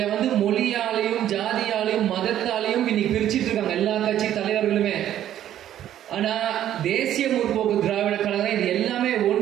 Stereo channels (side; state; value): left; quieter; 11.5 dB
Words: வந்து மொழியாலையும் ஜாதியாலையும் மதத்தாலையும் இன்னைக்கு பிரிச்சுட்டு இருக்காங்க எல்லா கட்சி தலைவர்களுமே. ஆனா தேசிய முற்போக்கு திராவிட கழகம் இது எல்லாமே